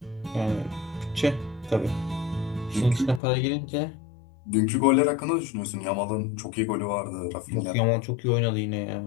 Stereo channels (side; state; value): right; drops out; at 3.2 s